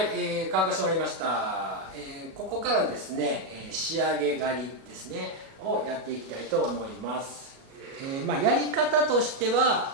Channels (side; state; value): left; late; 37 ms